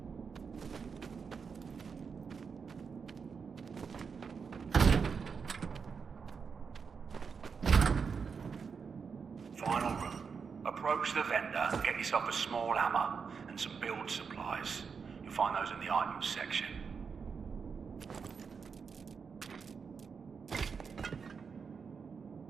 Final room. Approach the vendor and get yourself a small hammer and some build supplies. You'll find those in the items section.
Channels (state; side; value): quieter; left; 5.8 dB